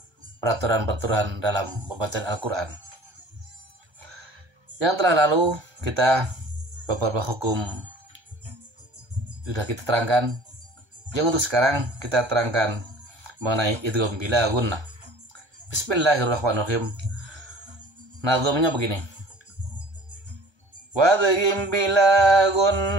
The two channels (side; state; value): left; late; 1.3 ms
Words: peraturan-peraturan dalam pembacaan Al-Quran. Yang telah lalu kita beberapa hukum sudah kita terangkan. Yang untuk sekarang kita terangkan mengenai idgham bila gunnah. Bismillahirrahmanirrahim. Nazamnya begini. Wadghim bila